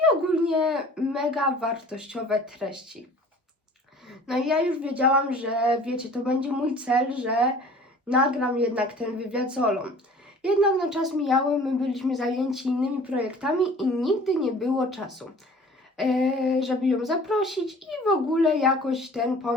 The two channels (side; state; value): both; normal; correlation 0.47